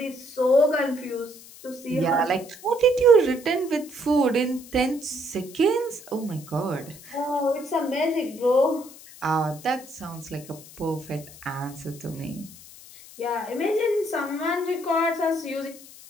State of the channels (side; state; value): left; noise; hiss, 19 dB below the sound